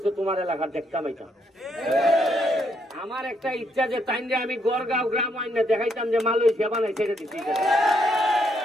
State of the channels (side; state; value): both; normal; correlation 0.74